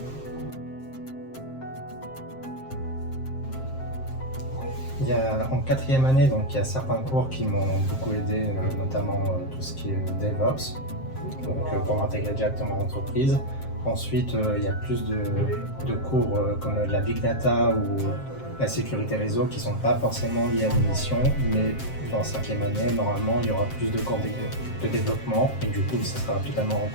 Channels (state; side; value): late; right; 7.6 ms